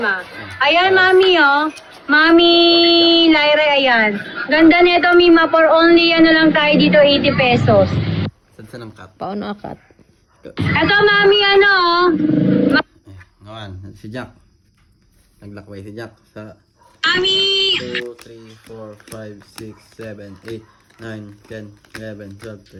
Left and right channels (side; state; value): both; identical; correlation 1.00